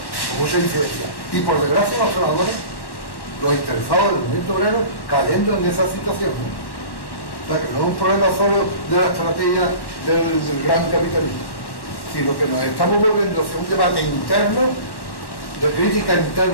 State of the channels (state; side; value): late; right; 1.1 ms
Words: incidencia. Y por desgracia los trabajadores, los interesados del movimiento obrero, cayendo en esa situación. O sea que no es un problema solo de la estrategia del gran capitalismo, sino que nos estamos volviendo hacia un debate interno, de crítica